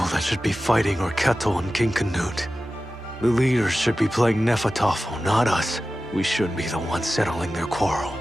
that should be fighting are Ketil and King Canute. The leaders should be playing Nefertofo, not us. We should be the ones settling their quarrel.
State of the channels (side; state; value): both; normal; correlation 0.94